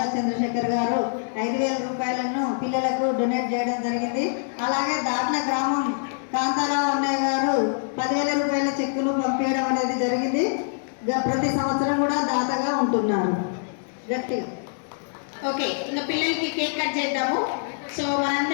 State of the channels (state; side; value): silent; right; digital silence